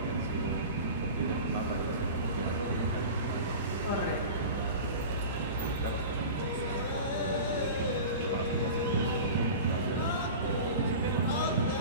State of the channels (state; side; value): inverted; both; correlation -0.34